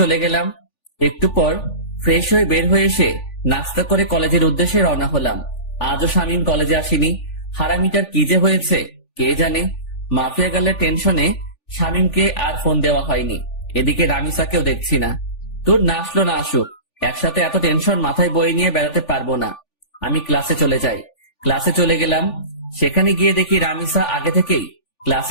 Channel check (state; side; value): late; right; 3.4 ms